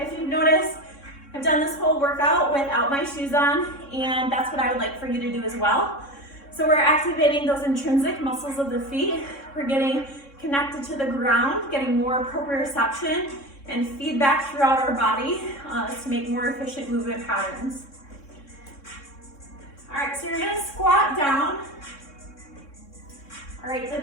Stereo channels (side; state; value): right; late; 3.6 ms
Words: you've noticed, I've done this whole workout without my shoes on, and that's what I would like for you to do as well. So we're activating those intrinsic muscles of the feet. We're getting connected to the ground, getting more proprioception and feedback throughout our body to make more efficient movement patterns. All right, so you're gonna squat down. All right,